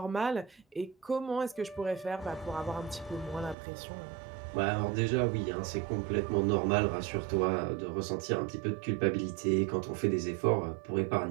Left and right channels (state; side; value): drops out; left; at 3.6 s